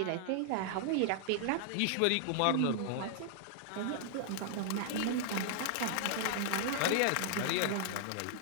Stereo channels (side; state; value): both; different; correlation -0.01